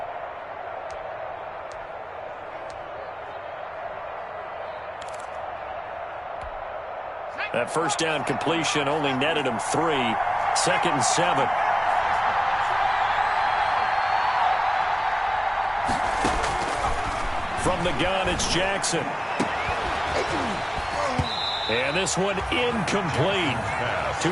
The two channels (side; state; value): both; identical; correlation 1.00